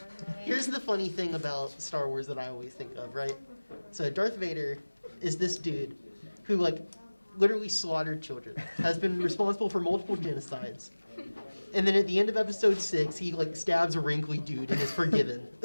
movies. here's the funny thing about Star Wars that I always think of, right? So Darth Vader is this dude who like literally slaughtered children, has been responsible for multiple genocides. And then at the end of episode 6, he like stabs a wrinkly dude and is forgiven.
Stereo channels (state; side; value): inverted; both; correlation -1.00